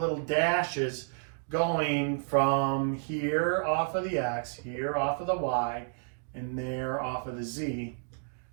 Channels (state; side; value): silent; left; digital silence